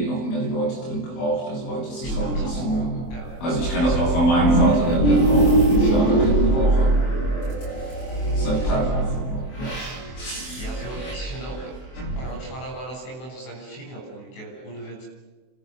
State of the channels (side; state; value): right; late; 23 ms